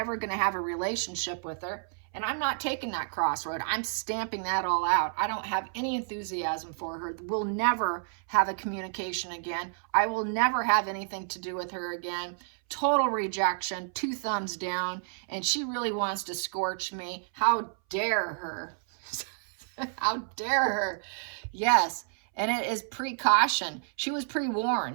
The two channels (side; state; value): left; silent; 58 dB below the other